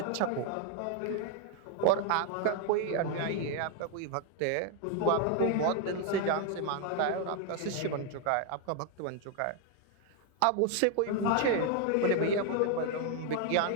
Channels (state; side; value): different; both; correlation 0.00